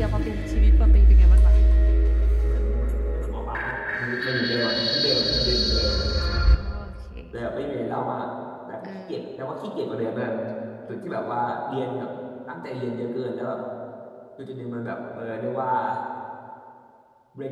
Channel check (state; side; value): identical; both; correlation 1.00